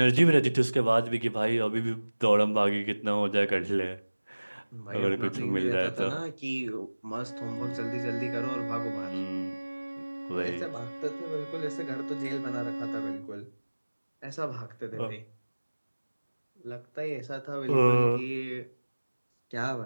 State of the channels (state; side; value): inverted; both; correlation -1.00